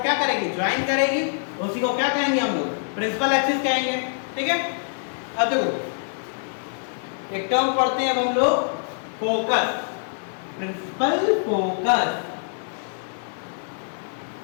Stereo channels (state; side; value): silent; right; digital silence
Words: क्या करेगी? ज्वाइन करेगी, उसी को क्या कहेंगे हम लोग? प्रिंसिपल एक्सिस कहेंगे। ठीक है, अब देखो एक टर्म पढ़ते हैं अब हम लोग, फोकस। प्रिंसिपल फोकस,